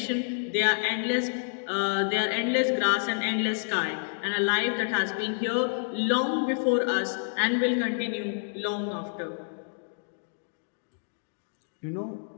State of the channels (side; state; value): right; silent; digital silence